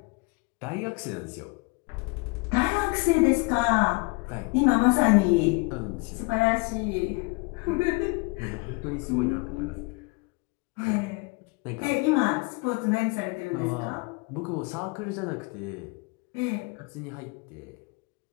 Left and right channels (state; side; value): quieter; right; 28.9 dB